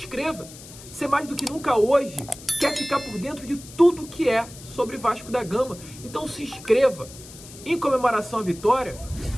Você mais do que nunca hoje quer ficar por dentro de tudo que é sobre Vasco da Gama. Então se inscreva. Em comemoração à vitória,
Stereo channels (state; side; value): noise; left; hiss, 17 dB below the sound